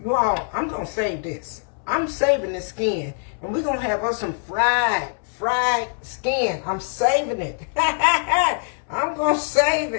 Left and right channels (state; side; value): silent; right; 63 dB below the other